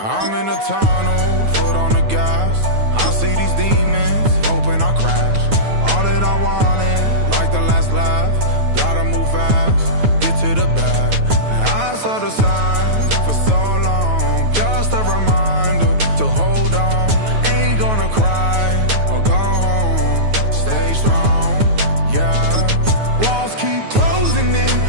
I'm in a tunnel, foot on the gas. I see these demons, hoping I crash. All that I wanted, like the last laugh. Gotta move fast, get to the bag. And I saw the signs for so long. Just a reminder to hold on. Ain't gonna cry or go home. Stay strong, yeah. Walls keep closing in,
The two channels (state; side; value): late; left; 9.3 ms